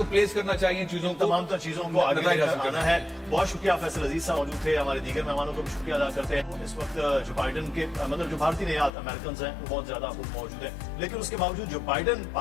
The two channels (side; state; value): right; drops out; at 8.9 s